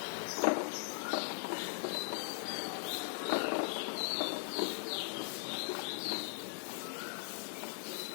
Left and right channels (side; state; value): right; silent; digital silence